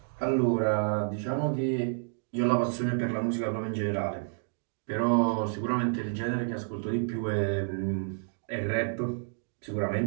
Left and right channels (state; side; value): silent; left; digital silence